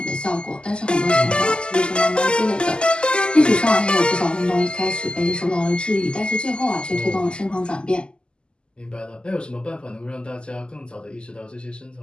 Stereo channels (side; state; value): right; late; 0.049 ms